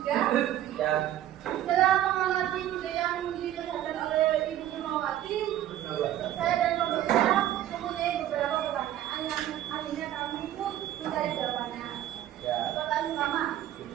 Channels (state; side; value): quieter; left; 12.3 dB